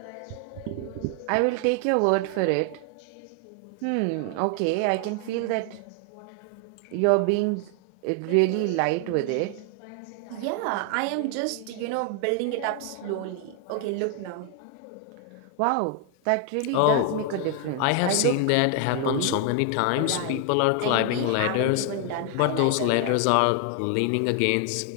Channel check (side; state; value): both; different; correlation 0.00